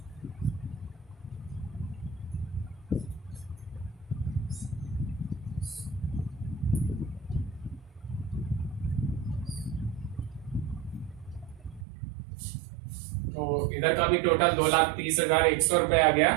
तो इधर का भी टोटल 2,30,100 रुपए आ गया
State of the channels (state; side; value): drops out; left; at 11.9 s